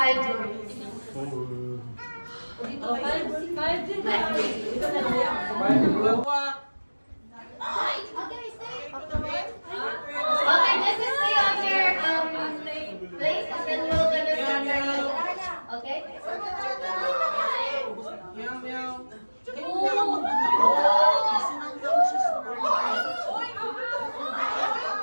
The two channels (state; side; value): inverted; both; correlation -1.00